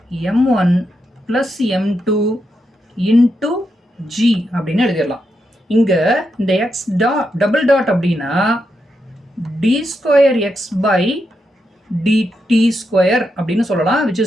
m1 plus m2 into g அப்படின்னு எழுதிடலாம். இங்க இந்த x double dot அப்படின்னா d square x by dt square அப்படின்னு சொல்லலாம், which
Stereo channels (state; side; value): normal; both; correlation 0.84